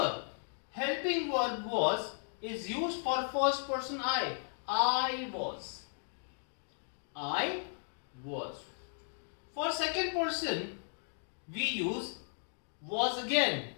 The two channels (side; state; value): right; silent; digital silence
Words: helping verb was is used for first person I. I was. I was. For second person, we use was again.